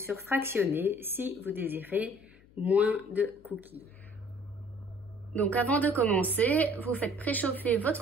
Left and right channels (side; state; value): left; noise; hum, 27 dB below the sound